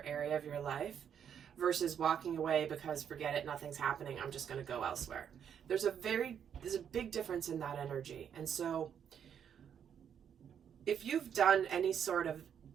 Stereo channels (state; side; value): quieter; left; 8.4 dB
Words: area of your life versus walking away because forget it, nothing's happening, I'm just going to go elsewhere. There's a big difference in that energy. And so if you've done any sort of